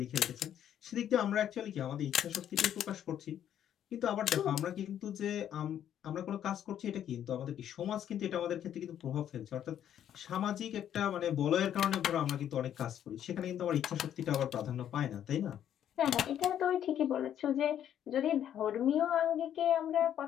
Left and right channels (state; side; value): quieter; right; 10.2 dB